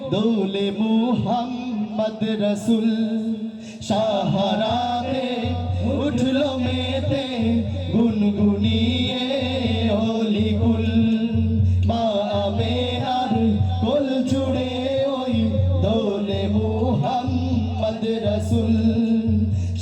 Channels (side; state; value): both; identical; correlation 1.00